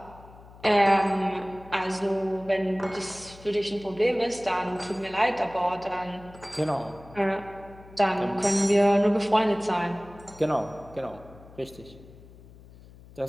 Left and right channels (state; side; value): noise; left; hum, 21 dB below the sound